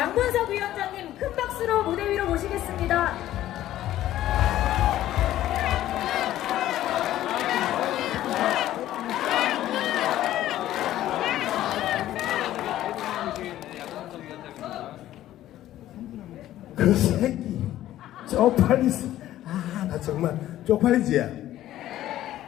위원장님 큰 박수로 무대 위로 모시겠습니다. 그 새끼 쪽팔리지. 나 정말 쪽팔리지.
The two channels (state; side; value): quieter; right; 13.5 dB